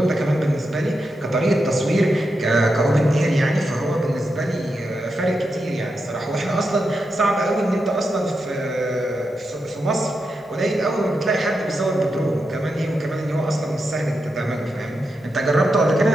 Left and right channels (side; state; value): both; normal; correlation 0.86